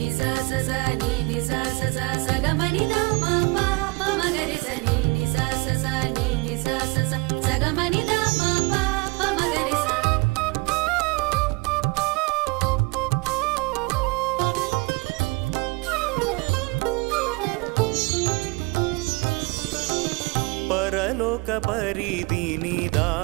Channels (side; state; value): left; quieter; 26.3 dB